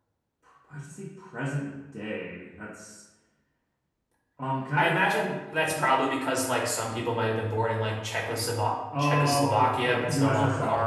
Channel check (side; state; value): both; identical; correlation 1.00